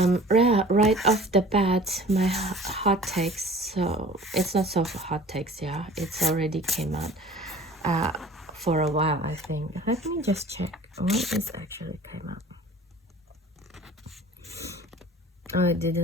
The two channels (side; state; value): both; normal; correlation 0.45